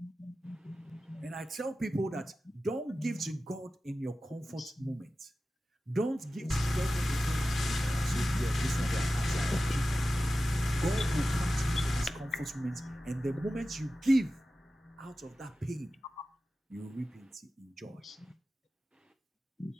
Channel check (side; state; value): both; normal; correlation 0.94